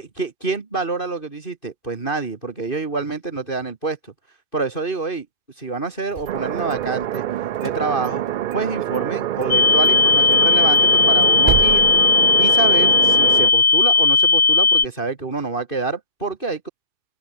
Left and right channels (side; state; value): right; late; 2.5 ms